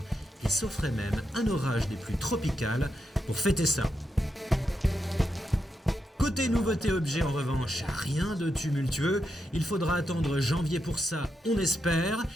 Il s'offrait même un orage des plus tropicales pour fêter ça. Côté nouveauté objet en revanche, rien de tumultueux, il faudra attendre janvier pour ça, on espère,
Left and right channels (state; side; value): normal; both; correlation 0.85